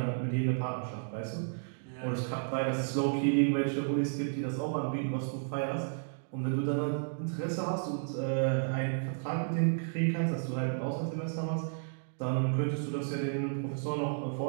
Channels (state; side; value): silent; left; digital silence